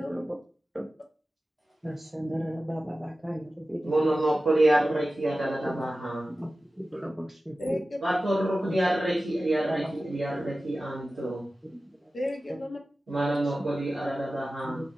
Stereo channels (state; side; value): normal; both; correlation 0.95